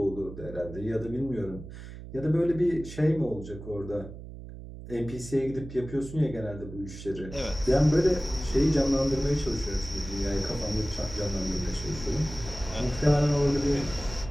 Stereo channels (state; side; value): noise; right; hum, 13 dB below the sound